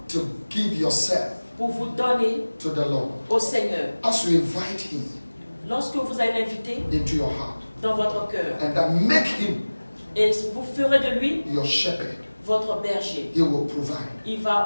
to give yourself pour vous donner to the Lord. au Seigneur. As you invite Him Lorsque vous allez l'inviter into your heart, dans votre cœur and then make Him et vous ferez de lui your shepherd, votre berger, He will provide. il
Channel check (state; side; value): inverted; both; correlation -1.00